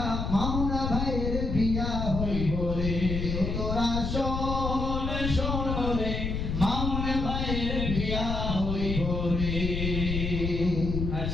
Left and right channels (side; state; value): left; noise; rumble, 2 dB below the sound